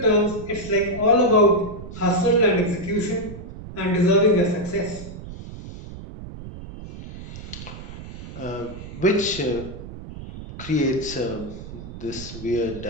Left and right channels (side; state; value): right; noise; rumble, 12 dB below the sound